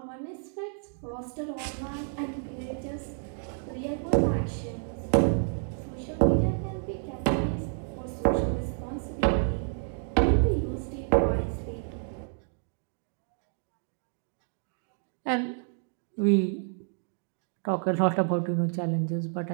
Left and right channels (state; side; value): silent; left; 58 dB below the other